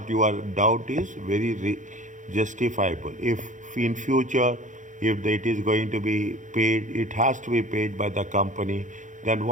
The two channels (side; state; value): left; late; 0.36 ms